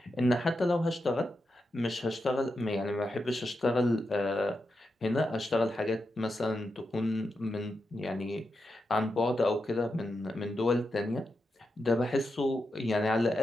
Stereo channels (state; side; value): normal; both; correlation 0.87